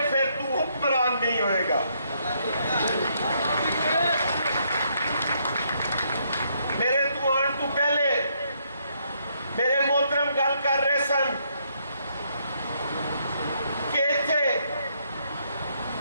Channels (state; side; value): inverted; both; correlation -0.73